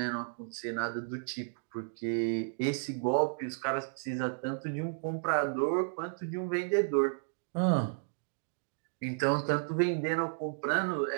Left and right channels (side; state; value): left; silent; digital silence